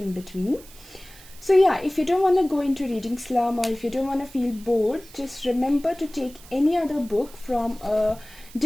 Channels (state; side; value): noise; right; hiss, 21 dB below the sound